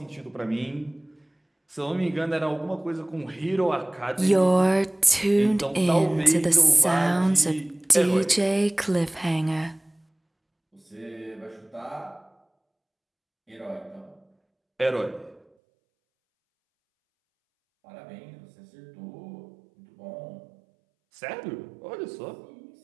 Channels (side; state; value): left; drops out; at 15.4 s